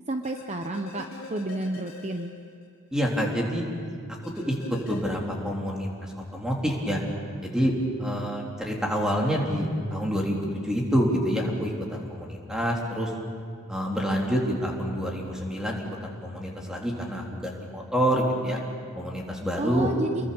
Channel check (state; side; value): normal; both; correlation 0.72